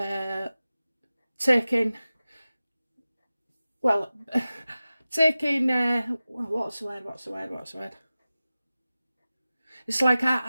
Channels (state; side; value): inverted; both; correlation -0.96